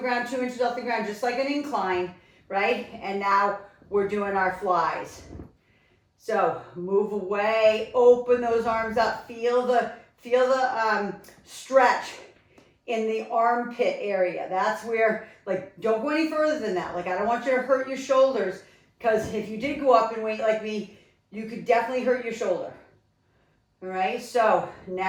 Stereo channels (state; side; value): identical; both; correlation 1.00